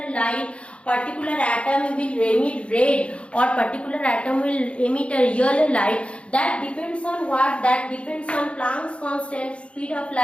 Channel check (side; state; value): right; late; 0.060 ms